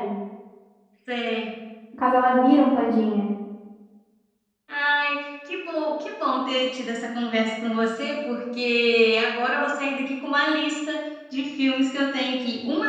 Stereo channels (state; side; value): identical; both; correlation 1.00